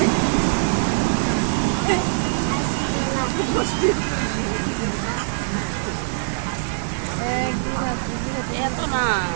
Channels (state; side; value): silent; left; digital silence